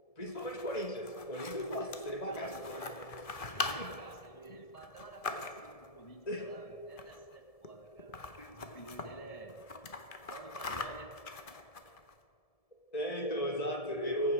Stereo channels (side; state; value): right; late; 1.7 ms